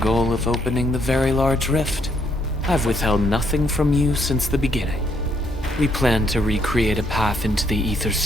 of opening the Very Large Rift, I've withheld nothing from you since the beginning. We plan to recreate a path into the ether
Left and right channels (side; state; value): both; normal; correlation 0.72